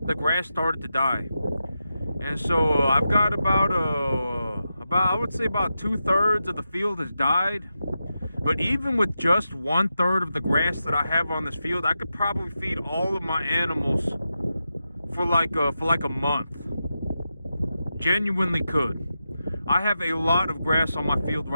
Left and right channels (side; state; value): both; inverted; correlation -0.89